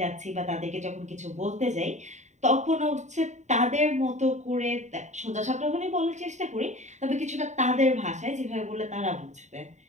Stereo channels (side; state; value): left; late; 0.34 ms